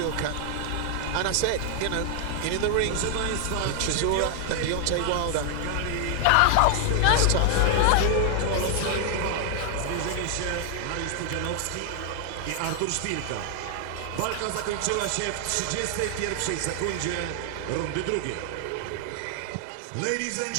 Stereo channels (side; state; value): both; different; correlation 0.00